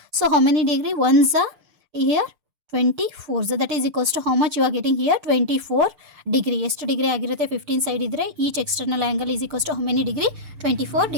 So how many degree? 1 here 24, that is equals to how much you are getting here? 24 degree. ಎಷ್ಟು ಡಿಗ್ರಿ ಆಗಿರುತ್ತೆ? 15 ಸೈಡ್ ಇದ್ದರೆ each external angle is equals to how many degree? 24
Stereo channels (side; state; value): left; late; 6.7 ms